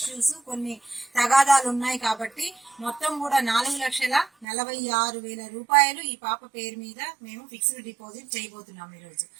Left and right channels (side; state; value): left; drops out; at 4.5 s